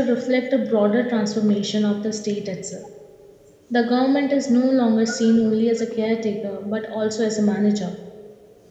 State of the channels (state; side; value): identical; both; correlation 1.00